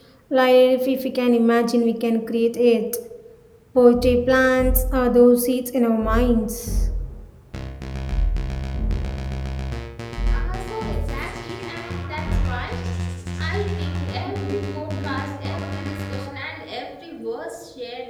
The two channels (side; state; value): both; identical; correlation 1.00